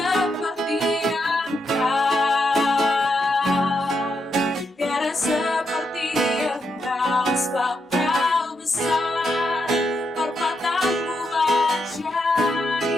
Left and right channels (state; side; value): normal; both; correlation 0.82